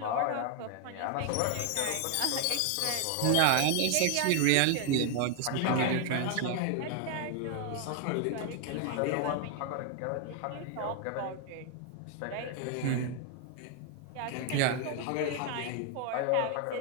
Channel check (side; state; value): both; different; correlation 0.00